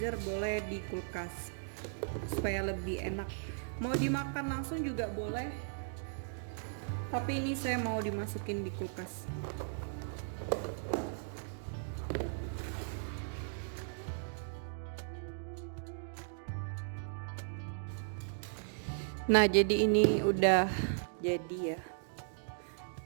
boleh di kulkas supaya lebih enak. Mau dimakan langsung juga boleh, tapi ini saya mau dimasukin di kulkas. Nah, jadi ini udah jadi ya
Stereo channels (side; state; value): left; silent; digital silence